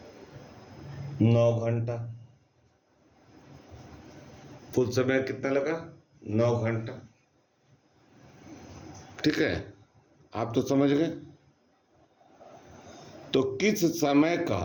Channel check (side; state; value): both; identical; correlation 1.00